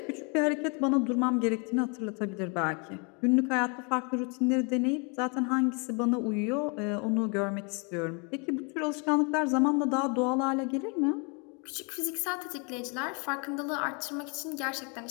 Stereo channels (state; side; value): quieter; right; 34.5 dB